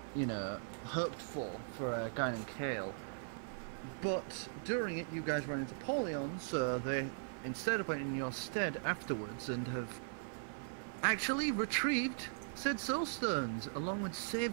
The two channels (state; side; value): silent; left; 52 dB below the other